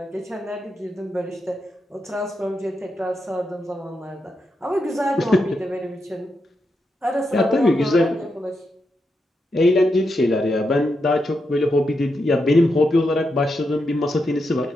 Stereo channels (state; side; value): normal; both; correlation 0.84